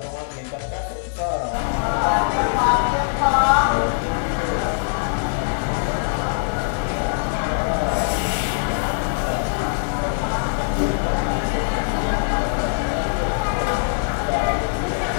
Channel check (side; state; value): right; silent; digital silence